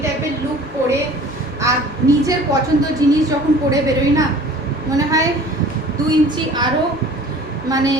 টাইপের লুক পরে আর নিজের পছন্দ জিনিস যখন পরে বেরোই না, মনে হয় 2 ইঞ্চি আরও মানে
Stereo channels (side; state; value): both; normal; correlation 0.47